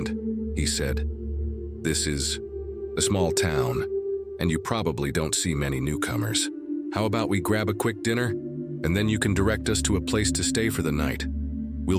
he said. This is a small town, and you probably don't see many newcomers. How about we grab a quick dinner, and then you can direct us to a place to stay for the night? We'll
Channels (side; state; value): both; identical; correlation 1.00